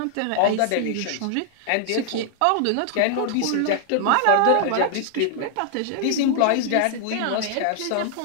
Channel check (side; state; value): both; different; correlation -0.01